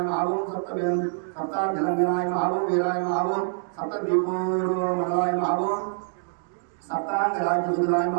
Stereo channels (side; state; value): left; silent; digital silence